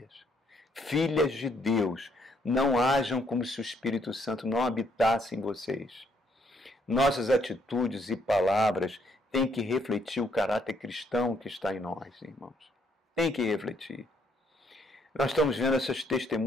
Filhas de Deus, não ajam como se o Espírito Santo não habitasse em vocês. Nossas atitudes e palavras têm que refletir o caráter cristão que está em nós, irmãos. Tem que refletir. Nós estamos vendo esses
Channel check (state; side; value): normal; both; correlation 0.70